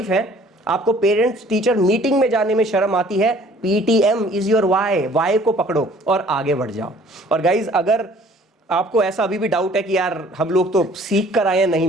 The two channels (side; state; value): both; normal; correlation 0.54